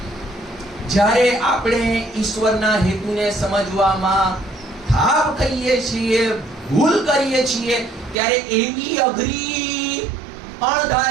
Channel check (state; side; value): drops out; left; at 8.2 s